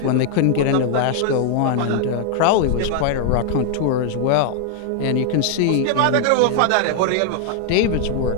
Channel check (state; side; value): different; both; correlation 0.00